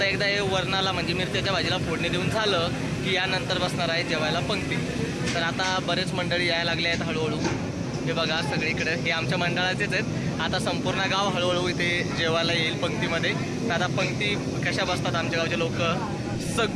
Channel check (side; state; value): both; identical; correlation 1.00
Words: एकदा हे वरणाला म्हणजे मिरच्याच्या भाजीला फोडणी देऊन झालं की यानंतर बसणार आहे जेवायला पंक्ती. तर आता बरेच मंडळी यायला लागले आहेत हळूहळू. हे बघा सगळीकडे हे आमच्या मंडळाचेच आहेत. आता संपूर्ण गाव हळूहळू इथे जेवायला येईल पंक्तीमध्ये. तर आता पंक्ती कशा बसतात आमच्या गावचे लोक